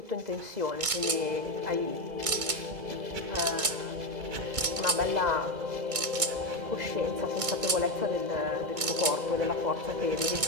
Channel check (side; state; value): left; late; 2.2 ms